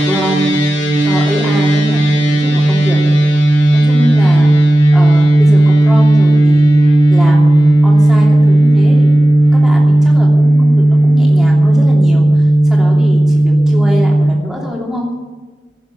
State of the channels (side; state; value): both; normal; correlation 0.96